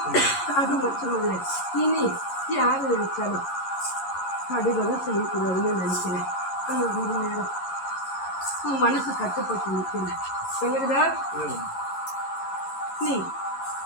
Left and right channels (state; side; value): late; right; 11 ms